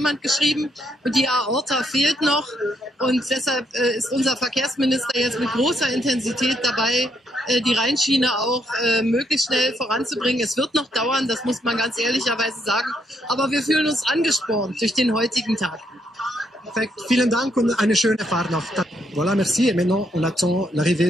geschrieben, und die Aorta fehlt noch. Und deshalb ist unser Verkehrsminister jetzt mit großer Intensität dabei, die Rheinschiene auch möglichst schnell voranzubringen. Es wird noch dauern, das muss man ganz ehrlicherweise sagen. Aber wir fühlen uns angespornt durch den heutigen Tag. Perfekt, vielen Dank und eine schöne Fahrt noch. Voilà, merci. Et maintenant, on attend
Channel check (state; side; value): normal; both; correlation 0.75